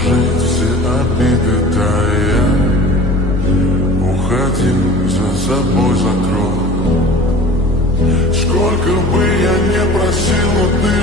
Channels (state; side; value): normal; both; correlation 0.41